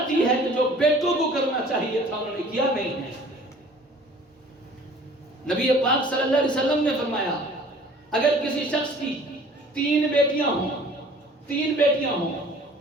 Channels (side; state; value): both; normal; correlation 0.50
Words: ہے جو بیٹوں کو کرنا چاہیے تھا، انہوں نے کیا نہیں ہے۔ نبی پاک صلی اللہ علیہ وسلم نے فرمایا اگر کسی شخص کی 3 بیٹیاں ہوں